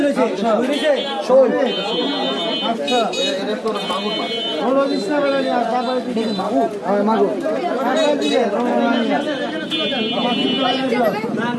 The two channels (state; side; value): identical; both; correlation 1.00